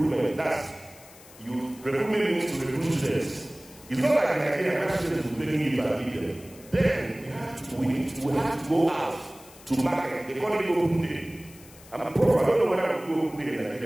That's recruitment means to recruit students. It's not like Nigerian students who bring you and leave them. Then we have to go out to market. They call it open day. I'm a prof. I don't know whether I will go open day in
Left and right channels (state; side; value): noise; left; hiss, 22 dB below the sound